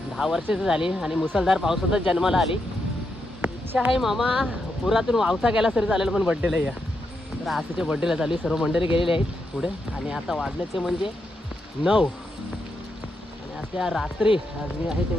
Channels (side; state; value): both; normal; correlation 0.83